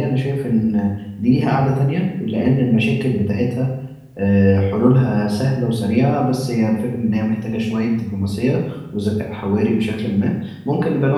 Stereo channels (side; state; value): both; identical; correlation 1.00